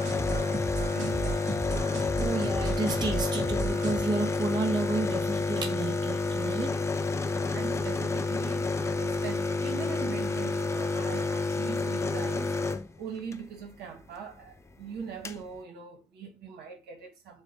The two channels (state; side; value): normal; both; correlation 0.78